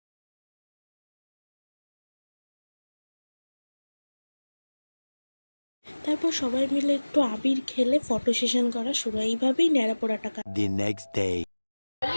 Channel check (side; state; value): both; inverted; correlation -1.00